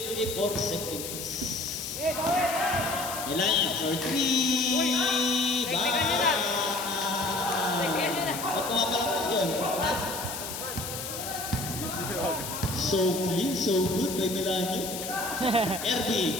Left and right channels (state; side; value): noise; left; hiss, 7 dB below the sound